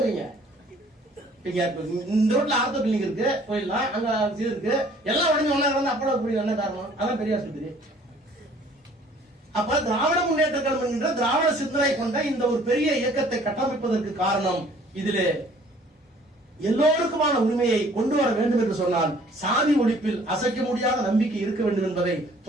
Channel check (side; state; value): both; normal; correlation 0.56